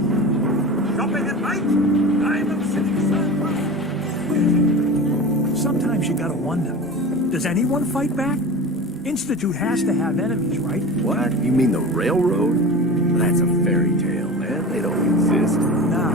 Shopping at night? Diamond City Surplus. Sometimes you gotta wonder, does anyone fight back? Institute has to have enemies, right? What? You mean the railroad? That's a fairy tale, man. They don't exist.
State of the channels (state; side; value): normal; both; correlation 0.32